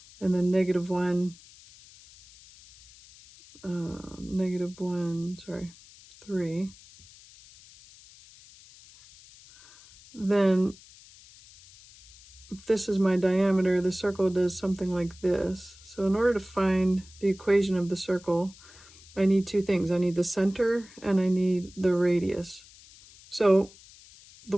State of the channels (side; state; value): left; noise; hiss, 23 dB below the sound